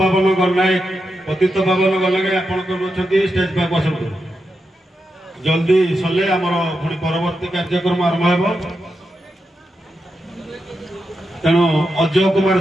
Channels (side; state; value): both; normal; correlation 0.87